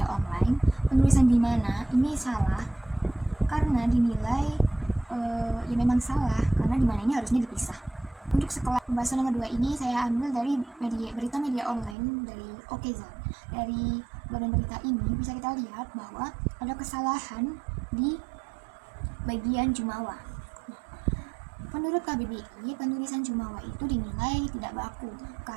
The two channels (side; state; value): left; drops out; at 12.0 s